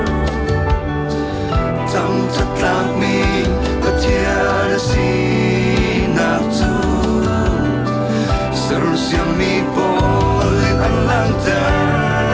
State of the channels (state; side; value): identical; both; correlation 1.00